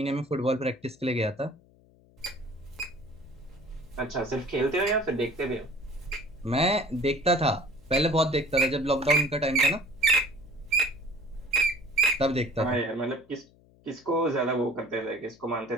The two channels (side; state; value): left; noise; hum, 29 dB below the sound